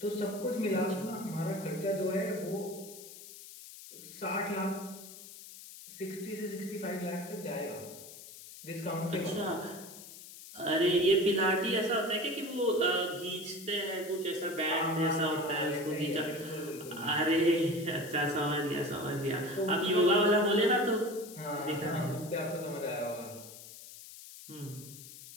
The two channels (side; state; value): left; noise; hiss, 15 dB below the sound